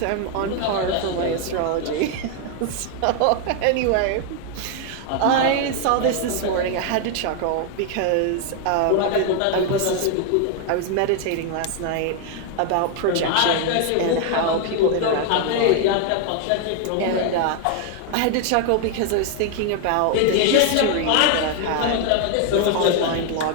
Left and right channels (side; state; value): both; different; correlation 0.00